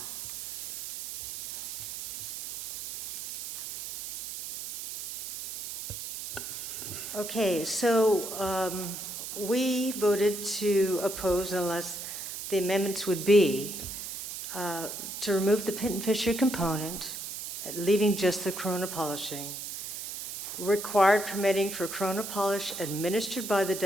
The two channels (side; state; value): right; noise; hiss, 7 dB below the sound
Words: Okay, so we voted to oppose unless the amendments would be to remove the pin and fissure component, leaving just the corona polishing, required permitting for corona polish administered by the